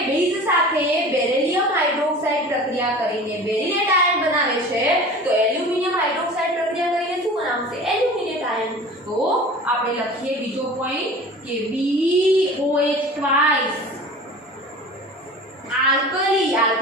બેઝ સાથે બેરિલિયમ હાઇડ્રોક્સાઇડ પ્રક્રિયા કરીને બેરિલેટ આયન બનાવે છે, તો એલ્યુમિનિયમ હાઇડ્રોક્સાઇડ પ્રક્રિયા કરીને શું બનાવશે? Aluminate ion. તો આપણે લખીએ બીજો પોઈન્ટ કે BOH ટ્વાઇસ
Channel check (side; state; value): both; normal; correlation 0.39